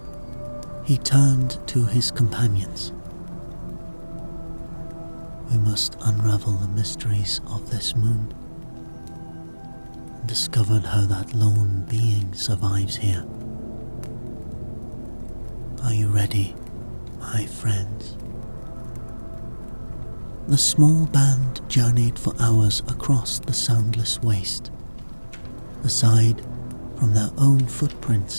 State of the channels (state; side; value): inverted; both; correlation -1.00